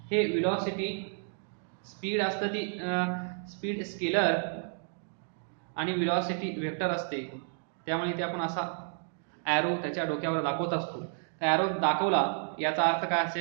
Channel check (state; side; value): silent; left; digital silence